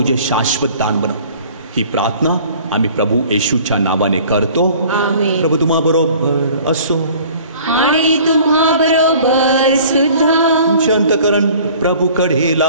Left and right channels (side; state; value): both; inverted; correlation -0.49